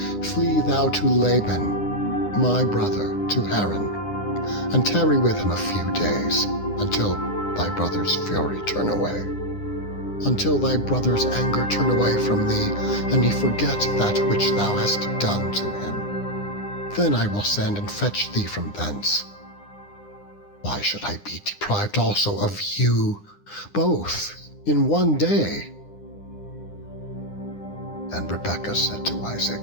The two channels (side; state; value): right; late; 9.8 ms